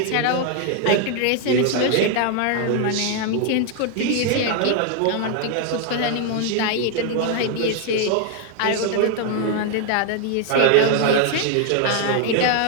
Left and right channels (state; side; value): different; both; correlation 0.00